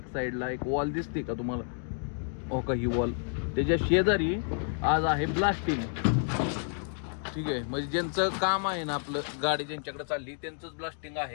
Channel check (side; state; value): right; silent; 58 dB below the other